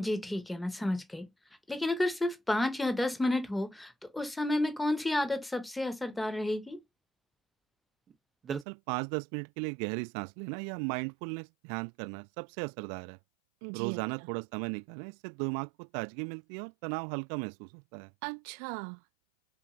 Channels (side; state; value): left; drops out; at 8.7 s